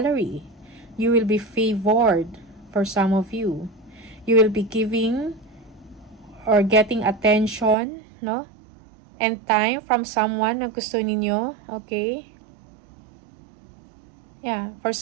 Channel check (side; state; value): left; drops out; at 7.8 s